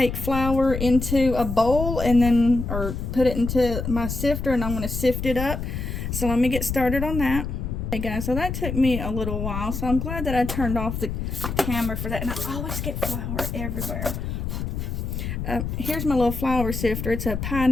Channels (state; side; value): noise; left; rumble, 4 dB below the sound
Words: flour into a bowl and then, or put it into my sifter, and I'm going to sift it up. So let me get started on that. Okay guys, so that took me a little while, so I'm glad that I turned off the camera for that. And I always get flour everywhere. Here's my little flour sifter. It's a